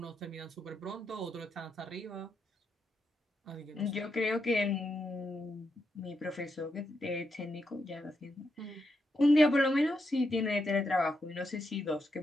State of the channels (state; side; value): normal; both; correlation 0.83